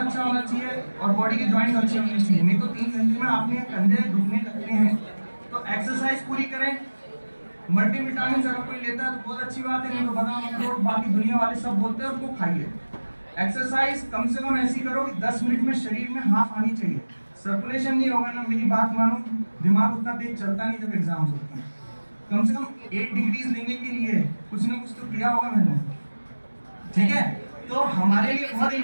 होना चाहिए और बॉडी के जॉइंट्स अच्छे होने चाहिए, नहीं तो 3 घंटे में आपने कंधे दुखने लगते हैं। तो एक्सरसाइज पूरी करें। मल्टीविटामिन अगर कोई लेता है तो बहुत अच्छी बात है, नहीं तो बादाम अखरोट बाकी दुनिया वाले सब बोलते हैं उनको खाइए। एक्सरसाइज कम से कम ऐसी करो कि 10 मिनट में शरीर में हाफ आनी चाहिए। सर्कुलेशन नहीं होगा ना, मेरी बात मानो, दिमाग उतना तेज चलता नहीं जब एग्जाम्स होते हैं। कम से कम 8 डिग्रीज लेने के लिए कुछ ना कुछ तो किया होगा मैंने, ठीक है। तो हमारे लिए बहुत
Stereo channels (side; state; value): both; inverted; correlation -1.00